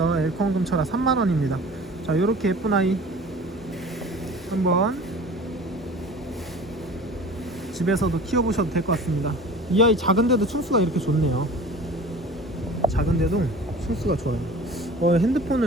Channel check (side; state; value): both; normal; correlation 0.41